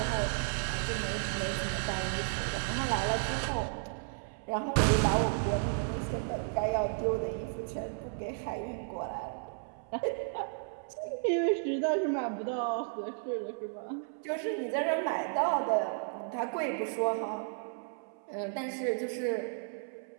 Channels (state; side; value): silent; left; 55 dB below the other